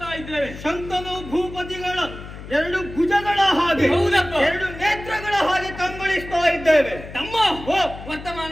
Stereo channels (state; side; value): noise; left; hum, 13 dB below the sound